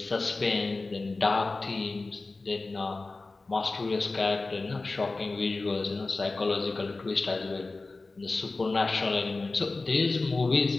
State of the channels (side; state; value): right; quieter; 3.5 dB